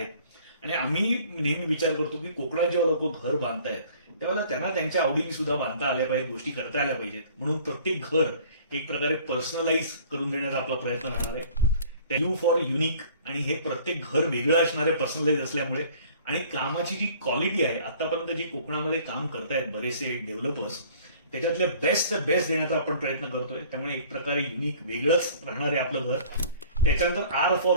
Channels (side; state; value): both; inverted; correlation -0.51